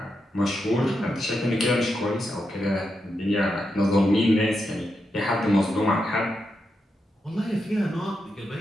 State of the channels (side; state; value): both; normal; correlation 0.85